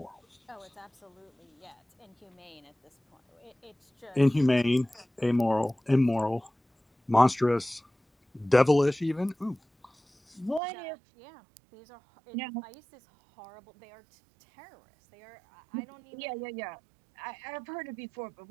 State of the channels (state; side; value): drops out; left; at 10.6 s